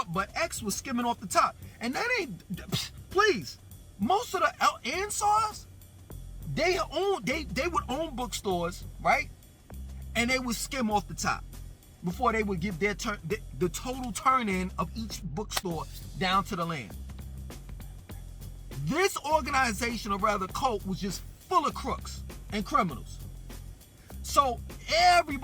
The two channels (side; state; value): both; identical; correlation 1.00